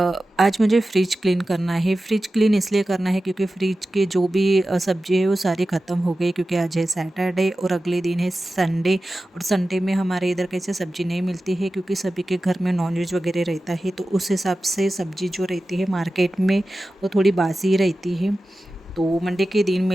आज मुझे फ्रिज क्लीन करना है। फ्रिज क्लीन इसलिए करना है क्योंकि फ्रिज के जो भी सब्ज़ी है वो सारी ख़त्म हो गई, क्योंकि आज है सैटरडे और अगले दिन है संडे, और संडे में हमारे इधर कैसे सब्ज़ी नहीं मिलती है क्योंकि सभी के घर में नॉनवेज वगैरह रहता है, तो उस हिसाब से सब्ज़ी जो रहती है मार्केट में वो थोड़ी बासी ही रहती है। तो मंडे के दिन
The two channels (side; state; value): both; normal; correlation 0.94